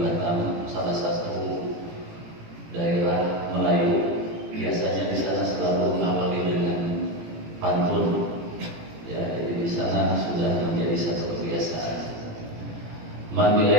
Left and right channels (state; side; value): late; left; 18 ms